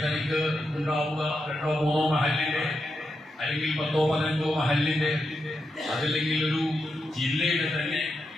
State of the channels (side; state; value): both; normal; correlation 0.86